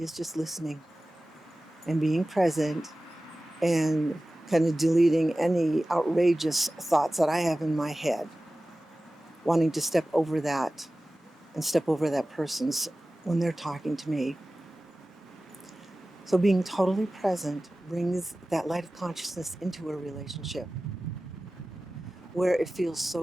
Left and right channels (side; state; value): both; normal; correlation 0.96